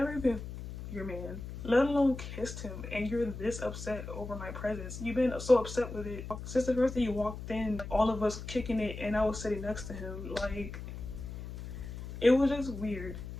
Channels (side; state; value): left; noise; hum, 9 dB below the sound